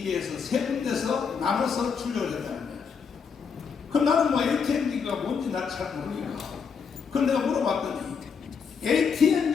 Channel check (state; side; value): quieter; right; 6.2 dB